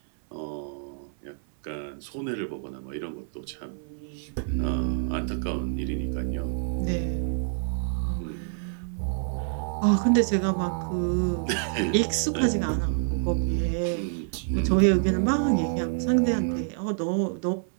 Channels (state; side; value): silent; left; 56 dB below the other